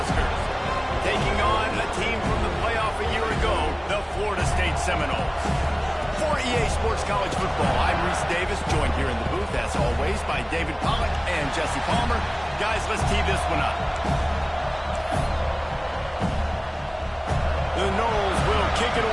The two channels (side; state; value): both; identical; correlation 1.00